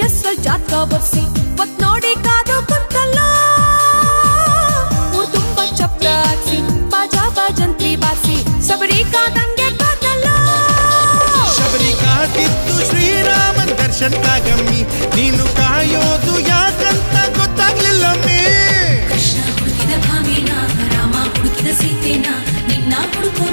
ಹೆಸ್ರಲ್ಲಿ ಜಾತಕ ಬರ್ಸಿ ಒತ್ ನೋಡಿ ಕಾದು ಕುಂತಲ್ಲ ಊರ್ ತುಂಬ ಚಪ್ರ ಹಾಕ್ಸಿ ಬಾಜಾ ಬಾಜಂತ್ರಿ ಬಾರ್ಸಿ ಶಬರಿ ಕಾದಂಗೆ ಕಾದಲ್ಲ ಶಬರಿ ಕಾದಿದ್ದು ಶ್ರೀರಾಮನ್ ದರ್ಶನ್ಕಾಗಮ್ಮಿ ನೀನು ಕಾಯೋದು ಯಾಕಂತ ಗೊತ್ತಾಗ್ಲಿಲ್ಲಮ್ಮಿ ಕೃಷ್ಣ ಹುಡುಕಿದ ಭಾಮೇನ ರಾಮ ಹುಡುಕಿದ ಸೀತೆನ ನಿನ್ನ ಹುಡುಕೋ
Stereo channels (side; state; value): both; inverted; correlation -1.00